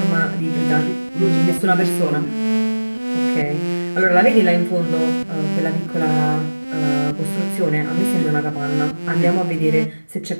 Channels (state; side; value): inverted; both; correlation -1.00